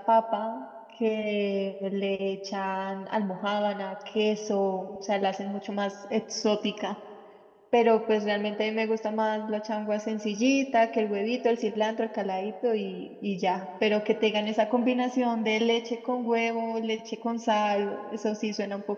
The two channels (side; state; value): both; identical; correlation 1.00